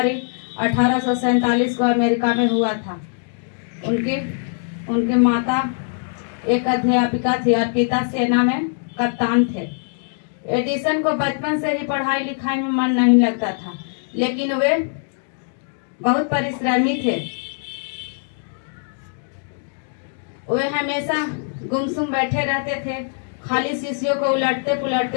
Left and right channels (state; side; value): silent; right; digital silence